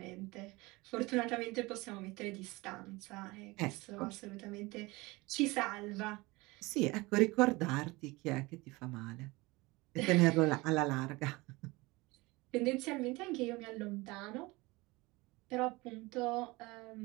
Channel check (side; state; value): left; quieter; 22.7 dB